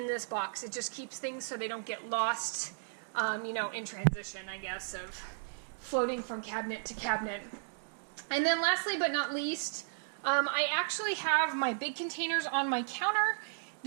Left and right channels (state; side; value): silent; left; digital silence